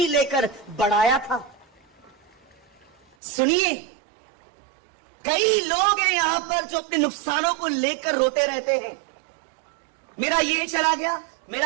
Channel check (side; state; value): left; drops out; at 3.2 s